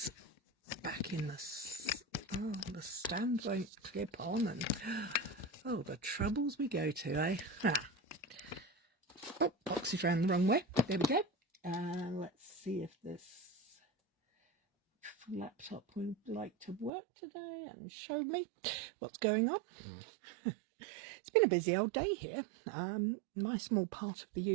back in the stand won't clip on, and oh, the troubles we go to, eh? Oh, box is round the wrong way. There we go. Let's see if this laptop would like to work today and show me what's going on. It's been a busy old day here. My small part of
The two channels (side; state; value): left; drops out; at 16.9 s